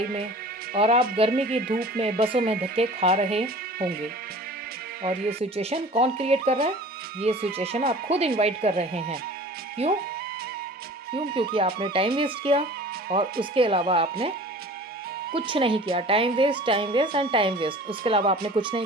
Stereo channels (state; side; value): normal; both; correlation 0.43